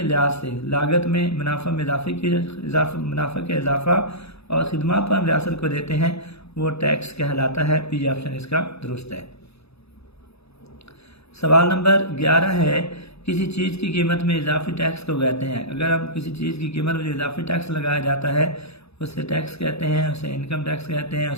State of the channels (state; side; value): late; right; 0.79 ms